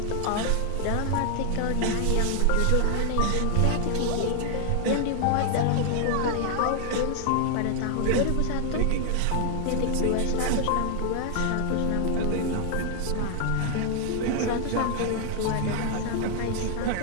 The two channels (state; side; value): different; both; correlation 0.00